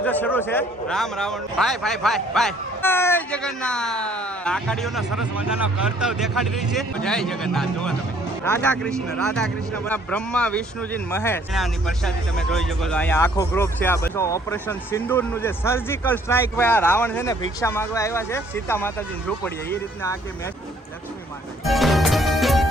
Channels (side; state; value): both; normal; correlation 0.61